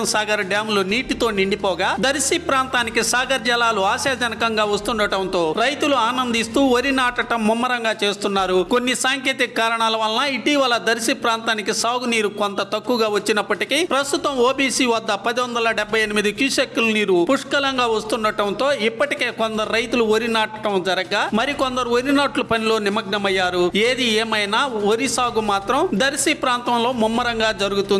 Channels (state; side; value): identical; both; correlation 1.00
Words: సాగర్ డ్యాంలు నీటితో నిండిపోగా దర్శి ప్రాంతానికి సాగర్ జలాలు ఆశాజనకంగా వస్తుండటంతో రైతులు ఆనందిస్తూ వరి నాటడం ముమ్మరంగా చేస్తున్నారు. కొన్ని సాంకేతిక కారణాల వలన ఇటీవల దర్శి ప్రాంతానికి సాగునీరు కొంత తక్కువగా వచ్చినప్పటికీ ప్రస్తుతం ఓబీసీ వద్ద 1078 క్యూసెక్కుల నీరు పుష్కలంగా వస్తుండటంతో ఇప్పటికే కొందరు రైతులు వరి నాటడం జరగగా మరికొందరు వరి నాట్ల పనిలో నిమగ్నమయ్యారు. ఏది ఏమైనా వరి సాగు మాత్రం దర్శి ప్రాంతంలో ముమ్మరంగా